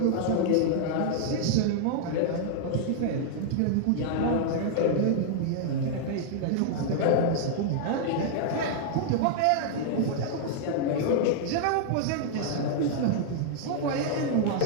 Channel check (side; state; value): both; different; correlation -0.01